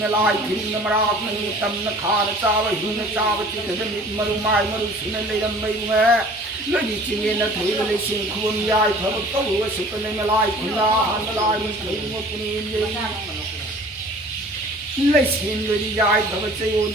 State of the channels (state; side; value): normal; both; correlation 0.48